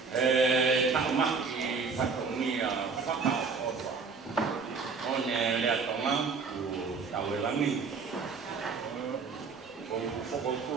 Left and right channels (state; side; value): quieter; left; 4.9 dB